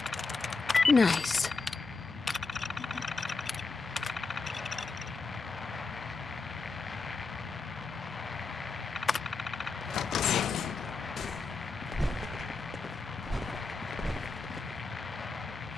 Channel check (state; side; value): quieter; right; 4.1 dB